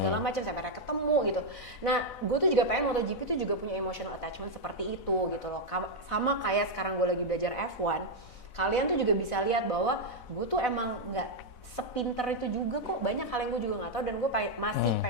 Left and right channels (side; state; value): right; late; 4.0 ms